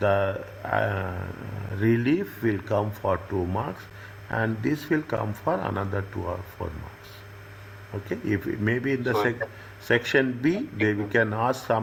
relief will come for 2 marks, and this will come for another 2 or 4 marks. Okay, if maybe in the section B, we can ask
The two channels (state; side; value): identical; both; correlation 1.00